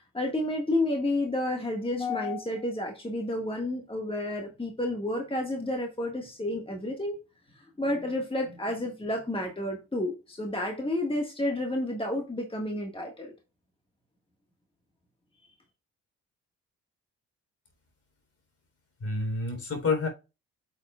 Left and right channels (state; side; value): normal; both; correlation 0.52